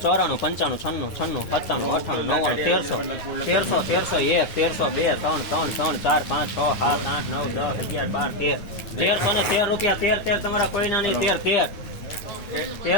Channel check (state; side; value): late; right; 10 ms